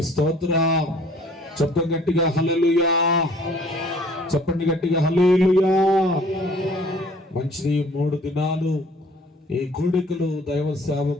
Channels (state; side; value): normal; both; correlation 0.55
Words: స్తోత్రం. చెప్పండి గట్టిగా హల్లెలూయా. చెప్పండి గట్టిగా హల్లెలూయా. మంచిది. 3 దినాలు ఈ కూడికలు దైవ